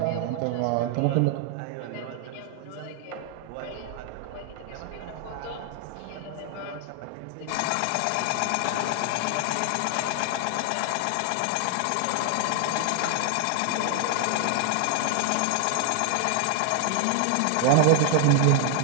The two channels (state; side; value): different; both; correlation 0.00